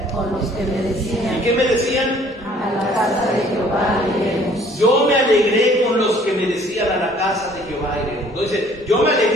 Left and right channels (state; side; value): normal; both; correlation 0.57